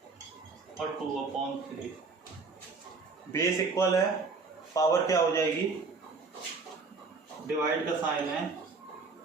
और 2/3। बेस इक्वल है, पावर क्या हो जाएगी, डिवाइड का साइन है,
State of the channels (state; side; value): quieter; left; 4.3 dB